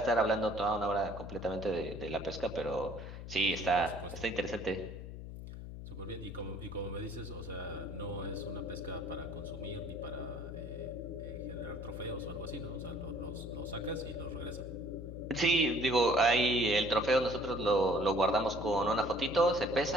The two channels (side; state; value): left; noise; hum, 10 dB below the sound